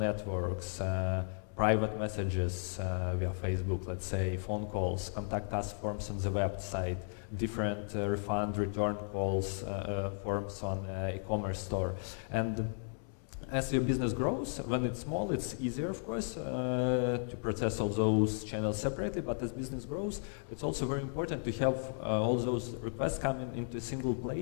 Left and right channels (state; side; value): silent; right; digital silence